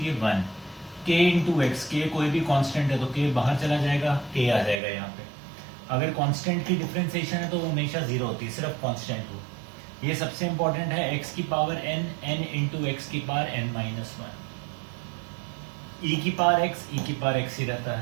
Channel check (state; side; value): drops out; left; at 4.8 s